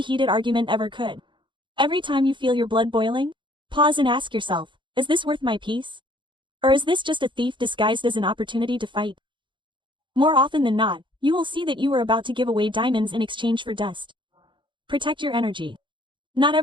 heated argument ever could. Every time you feel your blood boiling, pause and ask yourself, is this worth my peace? Or is this just a thief disguised as an opportunity to fight? More often than not, you will see that you are about to give away diamonds in exchange for dust. Protect your energy. Not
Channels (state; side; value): late; left; 0.23 ms